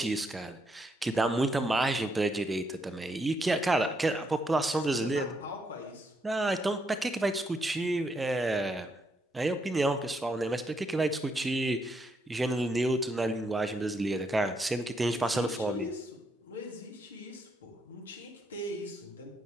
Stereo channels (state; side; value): normal; both; correlation 0.77